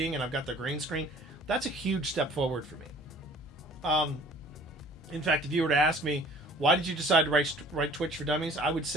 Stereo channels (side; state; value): both; normal; correlation 0.51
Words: and I've got the green screen. That's a huge step forward for me. In fact, if you were to ask me, why did you decide to write Twitch for Dummies? I would